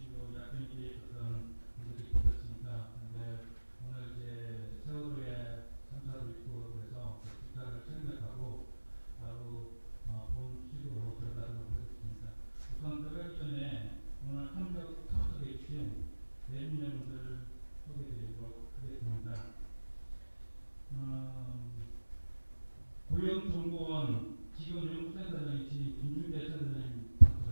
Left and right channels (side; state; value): both; inverted; correlation -1.00